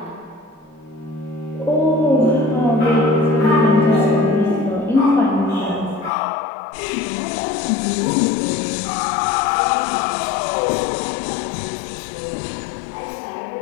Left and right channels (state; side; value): drops out; right; at 6.1 s